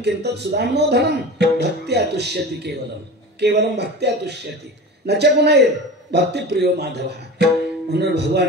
सुदाम्नो धनम भक्त्या तुष्यति केवलम केवलम भक्त्या तुष्यति न च पुनैर भक्तिप्रियो माधव. म्हणून भगवान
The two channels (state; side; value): normal; both; correlation 0.33